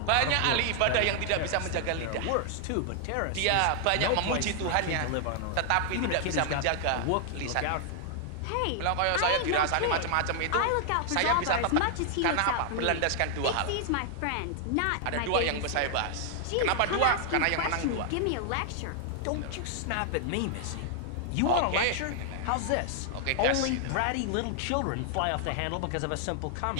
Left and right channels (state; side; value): different; both; correlation 0.00